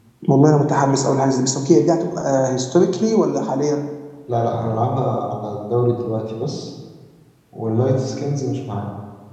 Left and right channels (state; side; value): identical; both; correlation 1.00